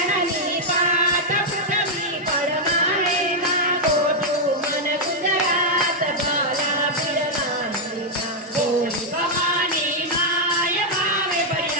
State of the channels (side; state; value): both; normal; correlation -0.03